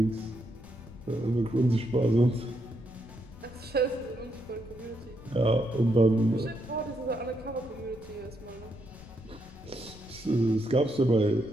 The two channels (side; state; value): left; noise; rumble, 19 dB below the sound